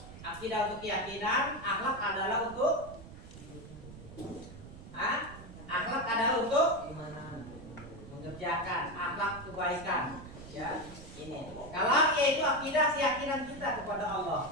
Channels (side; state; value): right; noise; rumble, 15 dB below the sound